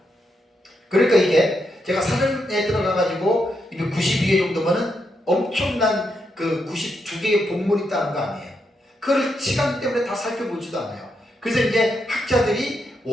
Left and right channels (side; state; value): both; normal; correlation 0.81